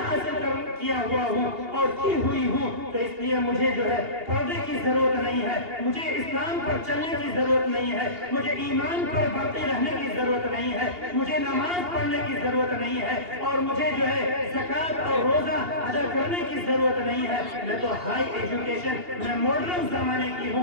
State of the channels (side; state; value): left; late; 2.8 ms